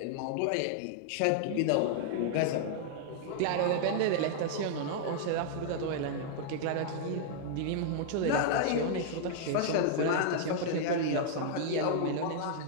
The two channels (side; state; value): both; different; correlation -0.01